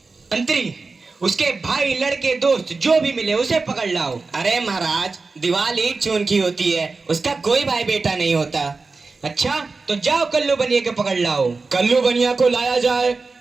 मंत्री, उसके भाई, लड़के, दोस्त जो भी मिले उसे पकड़ लाओ। अरे महाराज, दीवार ईंट चून की होती है, उसका कोई भाई बेटा नहीं होता। अच्छा, तो जाओ कल्लू बनिया को पकड़ लाओ। कल्लू बनिया को लाया जाए।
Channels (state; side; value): quieter; left; 4.0 dB